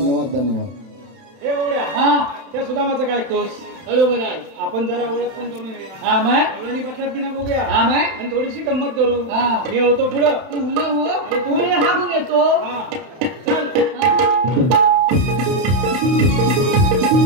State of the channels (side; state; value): left; late; 31 ms